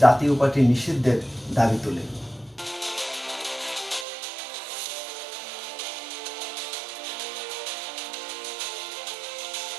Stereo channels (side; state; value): left; drops out; at 4.0 s